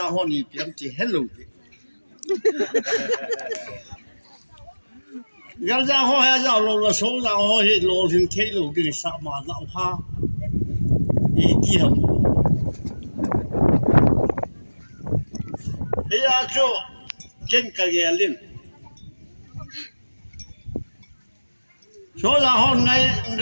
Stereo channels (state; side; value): inverted; both; correlation -1.00